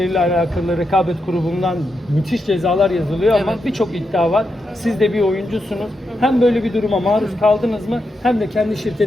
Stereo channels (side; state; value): both; normal; correlation 0.85